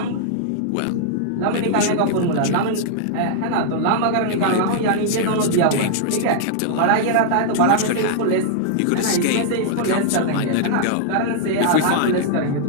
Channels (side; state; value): both; different; correlation -0.01